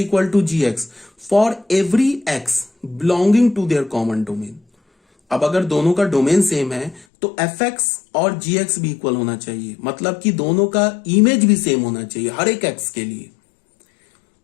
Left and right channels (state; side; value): drops out; right; at 7.1 s